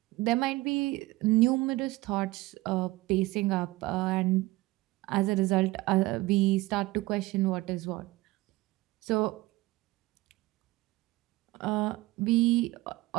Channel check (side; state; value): left; quieter; 19.6 dB